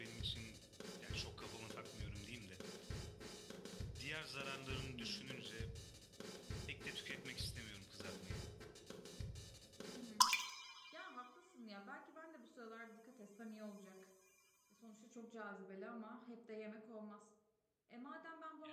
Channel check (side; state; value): both; identical; correlation 1.00